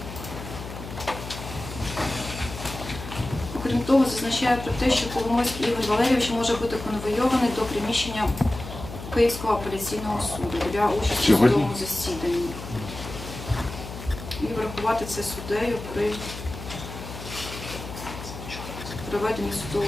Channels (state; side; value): noise; left; hum, 11 dB below the sound